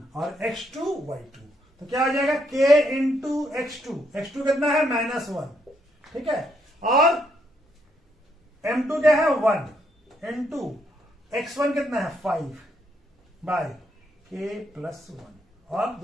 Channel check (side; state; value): both; normal; correlation 0.75